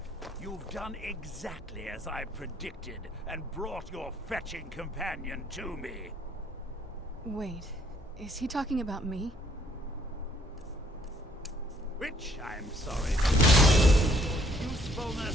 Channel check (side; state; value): both; normal; correlation 0.65